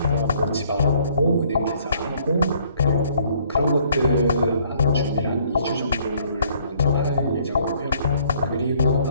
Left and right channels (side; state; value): both; inverted; correlation -0.62